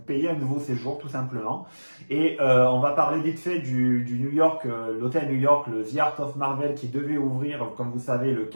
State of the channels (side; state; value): both; inverted; correlation -1.00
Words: payer un nouveau séjour tout simplement. Et on va parler vite fait du New York, l'hôtel New York, le The Art of Marvel qui devait ouvrir, comme vous savez, le